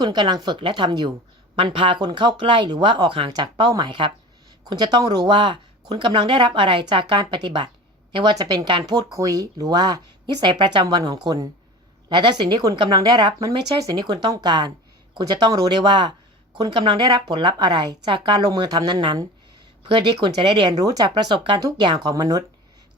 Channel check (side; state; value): both; normal; correlation 0.36